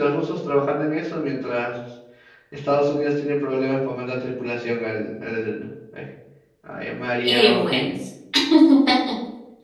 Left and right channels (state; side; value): identical; both; correlation 1.00